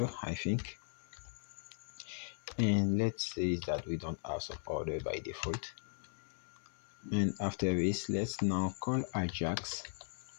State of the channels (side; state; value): right; silent; 53 dB below the other